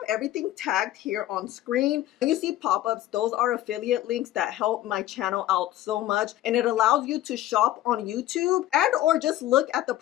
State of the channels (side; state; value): right; quieter; 14.1 dB